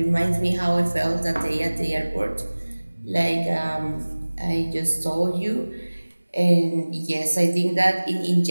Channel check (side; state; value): both; inverted; correlation -1.00